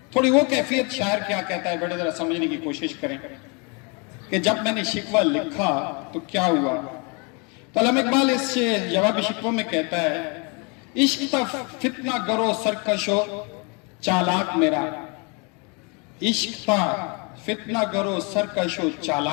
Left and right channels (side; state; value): right; quieter; 32.6 dB